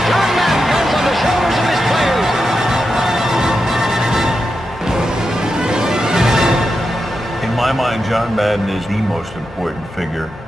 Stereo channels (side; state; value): both; normal; correlation 0.88